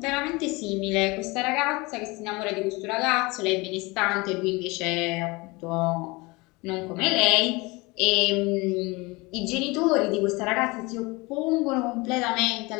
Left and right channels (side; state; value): right; quieter; 24.6 dB